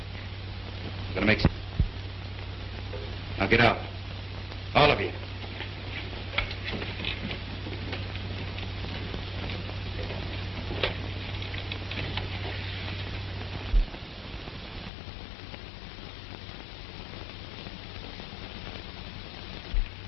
gonna make... Now get out. All of you.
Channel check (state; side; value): drops out; right; at 14.9 s